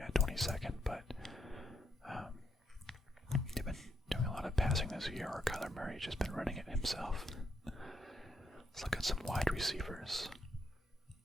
at 22nd, but they've been doing a lot of passing this year, or Kyler Murray's just been running it himself. Let's look at some wide receivers.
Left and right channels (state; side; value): normal; both; correlation 0.80